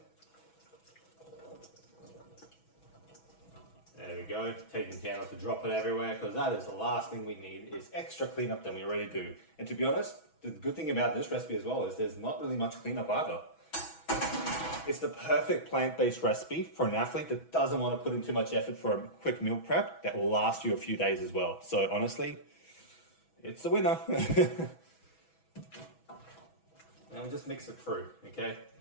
There we go, taking care not to drop it everywhere because that is the last thing we need is extra cleanup than we already do. And to be honest, the good thing about this recipe as well is there's not really much cleanup either. It's the perfect plant-based recipe for an athlete that doesn't want to put in too much effort for a quick meal prep that will last you a few days as well. So honestly, it's a winner. And we just mix it through, okay?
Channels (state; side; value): late; right; 6.1 ms